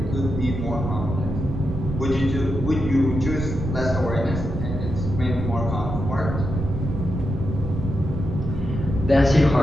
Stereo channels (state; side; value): noise; right; rumble, 4 dB below the sound